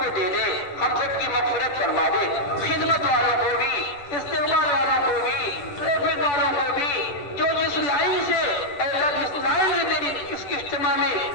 دے دے، ہم سب کی مغفرت فرما دے، خدمت والوں کو بھی، استقبال والوں کو بھی، ٹریفک والوں کو بھی، جو جس لائن سے اے اللہ جس لائن سے تیری اس اجتماع میں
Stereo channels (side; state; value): right; late; 10 ms